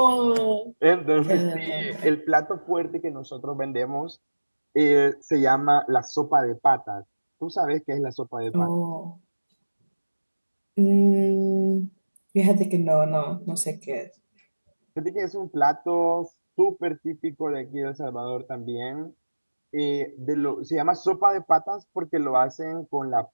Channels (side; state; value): both; inverted; correlation -1.00